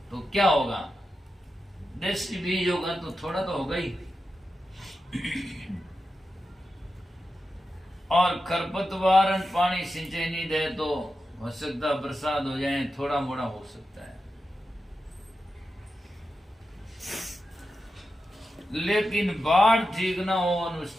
तो क्या होगा? देसी बीज होगा तो थोड़ा तो होगा ही, और खरपतवार पानी सिंचाई नहीं दे तो हो सकता बरसात हो जाए, थोड़ा मोड़ा हो सकता है। लेकिन बाढ़ ठीक ना हो और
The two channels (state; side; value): normal; both; correlation 0.90